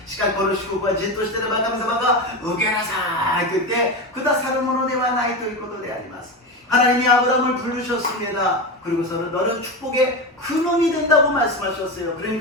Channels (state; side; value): normal; both; correlation 0.19